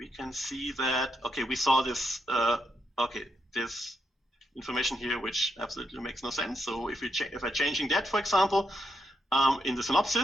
can see that, okay, we saw this, this information here, which absolutely makes no sense. So if I'm changing that, for example, in the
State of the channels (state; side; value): normal; both; correlation 0.81